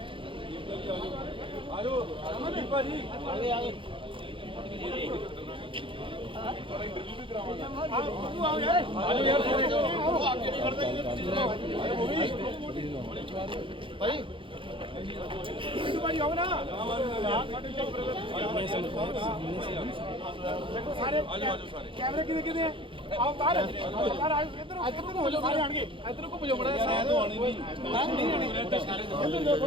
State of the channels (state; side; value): late; left; 0.25 ms